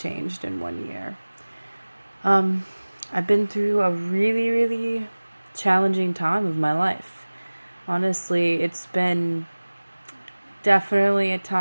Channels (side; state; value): both; inverted; correlation -1.00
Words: in 1 year. I've been through a really challenging time of my life. Honestly, it's been definitely a